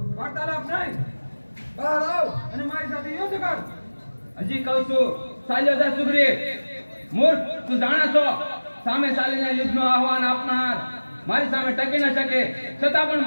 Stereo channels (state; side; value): inverted; both; correlation -1.00